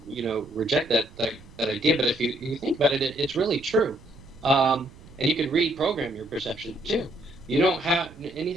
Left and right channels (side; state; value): right; noise; rumble, 21 dB below the sound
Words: reject that idea, but if you think about it, it's really true. And you can reprogram your perception too. You don't have